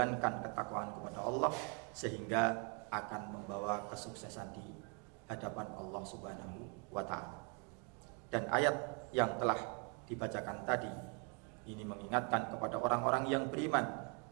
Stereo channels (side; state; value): left; quieter; 36.7 dB